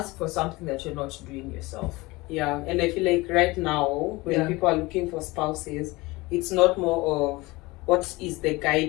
for something that you're not doing yourself. Yeah, and I feel like right now, when people are looking for spouses, it's not more of what is the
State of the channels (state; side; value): quieter; right; 22.2 dB